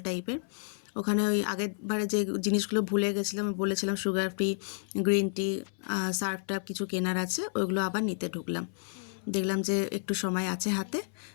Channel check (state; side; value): silent; right; 57 dB below the other